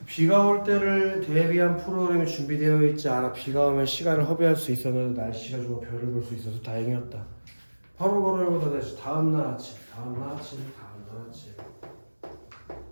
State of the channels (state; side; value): inverted; both; correlation -1.00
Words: 비가 올 때를 대비한 프로그램이 준비되어 있지 않아 비가 오면 시간을 허비할 수 있었는데 날씨가 좋아 별을 볼 수 있어서 다행이었다. 바로 걸어오고 다시 다음날 아침, 다음날 아침, 다음날 아침.